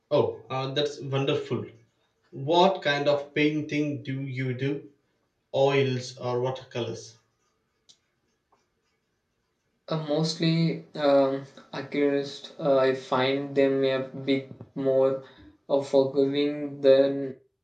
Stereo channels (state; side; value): identical; both; correlation 1.00